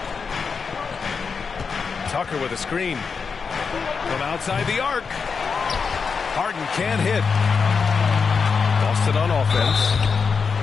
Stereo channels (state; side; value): quieter; right; 5.5 dB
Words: Tucker with a screen. From outside the arc. Harden can't hit. Boston on offense.